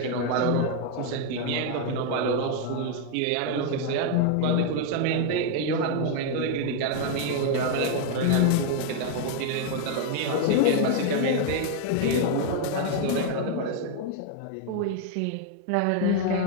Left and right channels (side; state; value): both; different; correlation 0.00